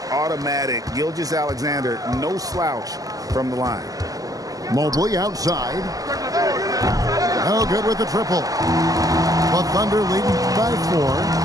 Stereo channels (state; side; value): late; left; 0.17 ms